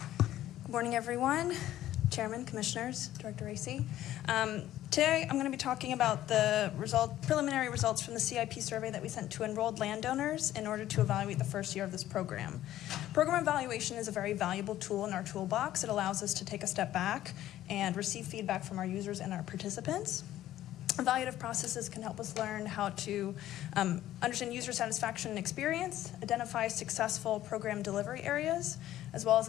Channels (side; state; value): right; quieter; 13.3 dB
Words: Good morning, everyone. Chairman, Commissioners, Director Racy. Today, I'm going to be talking about the preliminary results from the CIP survey that we sent to enrolled landowners in order to evaluate the first year of this program. Program evaluation is a very valuable tool in our toolbox. It allows us to take a step back and receive feedback from our users and our participants. Evaluative processes can help us learn how to understand user satisfaction and experience, identify successful program delivery areas, as well as